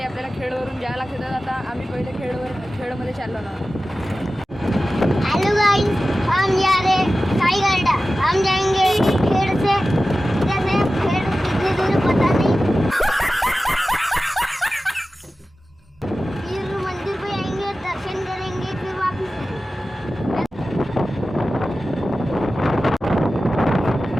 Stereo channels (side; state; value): both; normal; correlation 0.95